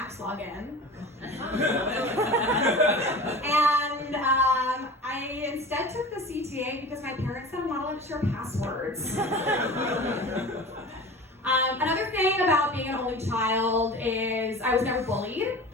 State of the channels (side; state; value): both; normal; correlation 0.36